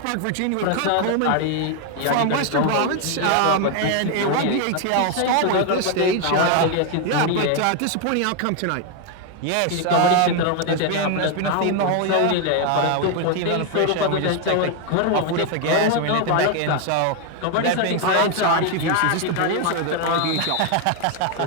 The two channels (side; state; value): both; different; correlation 0.01